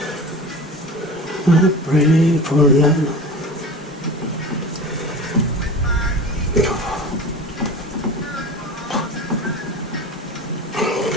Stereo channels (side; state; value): both; normal; correlation 0.35